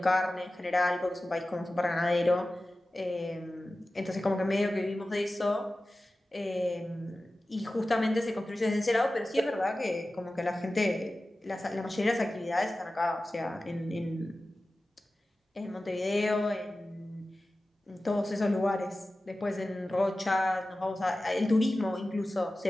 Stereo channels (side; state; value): both; normal; correlation 0.95